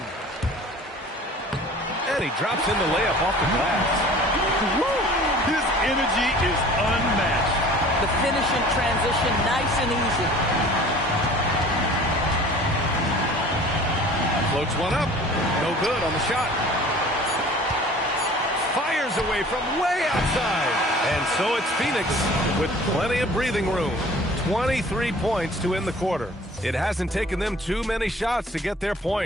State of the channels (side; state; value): both; normal; correlation 0.47